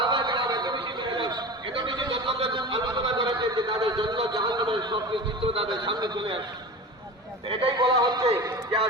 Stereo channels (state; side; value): normal; both; correlation 0.31